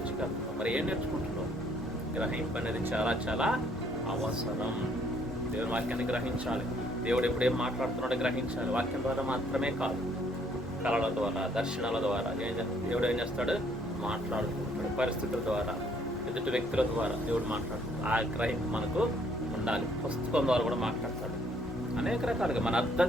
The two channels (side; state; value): both; normal; correlation 0.65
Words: వెళ్తాను, మరి ఏం నేర్చుకుంటున్నావు? గ్రహింపు అనేది చాలా చాలా అవసరం. దేవుని వాక్యాన్ని గ్రహించాలి. దేవుడు ఎప్పుడేం మాట్లాడుతున్నాడో గ్రహించాలి. వాక్యం ద్వారా మాత్రమే కాదు, కళల ద్వారా, దర్శనాల ద్వారా దేవుడు ఏం చేస్తాడు? మాట్లాడుతుంటాడు. పరిస్థితుల ద్వారా, ఎదుటి వ్యక్తుల ద్వారా దేవుడు మాట్లాడుతాడు. ఆ గ్రహింపు మనకు ఉండాలి. పుస్తకం ద్వారా కూడా మాట్లాడతాడు. అనేక రకాలుగా మనం అర్థం